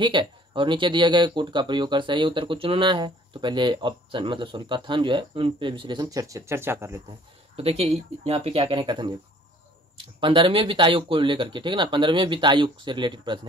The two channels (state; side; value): normal; both; correlation 0.55